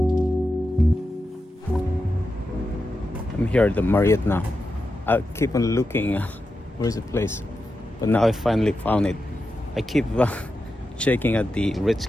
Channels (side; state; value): both; normal; correlation 0.89